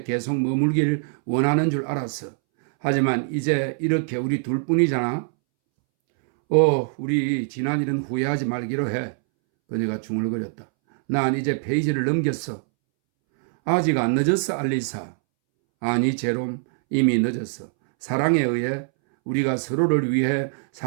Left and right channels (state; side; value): silent; left; 63 dB below the other